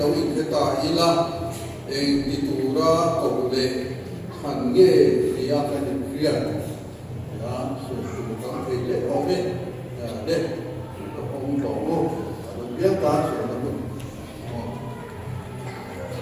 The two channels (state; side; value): identical; both; correlation 1.00